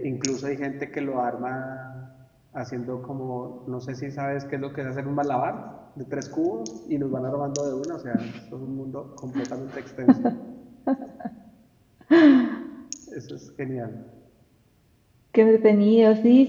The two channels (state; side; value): identical; both; correlation 1.00